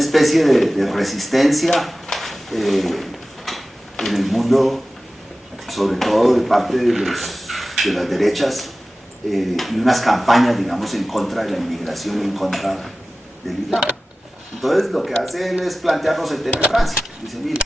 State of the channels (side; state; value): both; normal; correlation 0.96